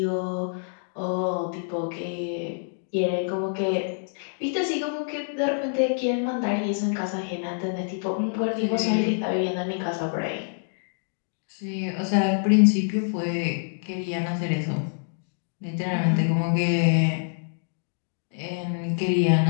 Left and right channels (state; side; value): silent; right; digital silence